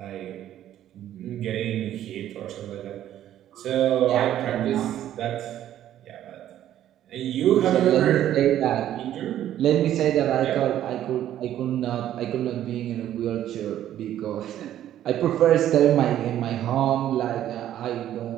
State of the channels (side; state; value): left; quieter; 11.8 dB